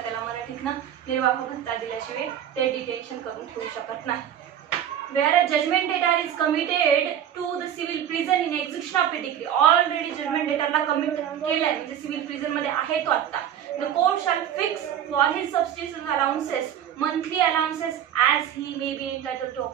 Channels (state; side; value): quieter; left; 9.9 dB